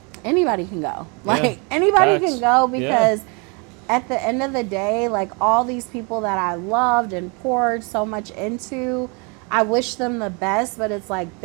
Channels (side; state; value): left; quieter; 32.3 dB